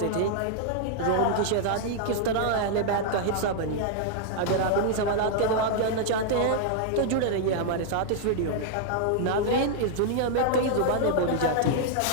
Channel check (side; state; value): both; different; correlation -0.01